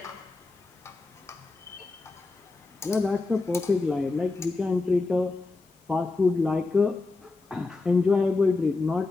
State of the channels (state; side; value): quieter; right; 3.6 dB